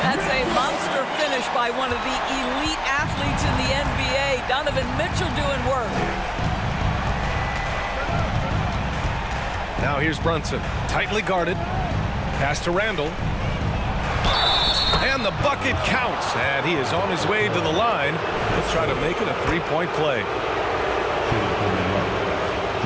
That's a monster finish by one of the elite athletes in the NBA. Donovan Mitchell doing work. Now here's Brunson. Tightly guarded. Pass to Randall. And the bucket counts. And he is on his way to the line. He'll try to make it a three-point play.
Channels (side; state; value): both; identical; correlation 1.00